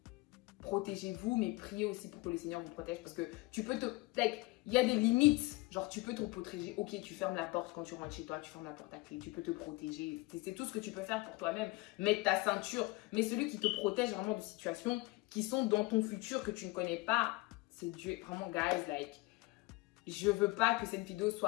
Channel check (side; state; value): right; quieter; 22.8 dB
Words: Protégez-vous, mais priez aussi pour que le Seigneur vous protège. Parce que tu peux il y a des limites. Genre, tu peux te protéger. Ok, tu fermes la porte quand tu rentres chez toi. Tu fermes la porte à clé. Tu peux te protéger. C'est tout ce que tu peux faire pour toi-même. Mettre ta ceinture. Mais celui qui te protège vraiment de situations qui sont dans ton futur que tu ne connais pas, c'est Dieu. Vraiment, guys, je veux pas que cette vidéo